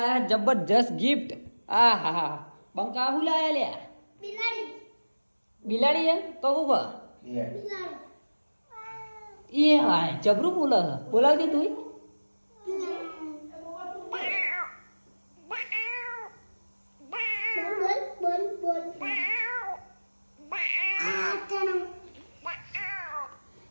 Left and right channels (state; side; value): inverted; both; correlation -1.00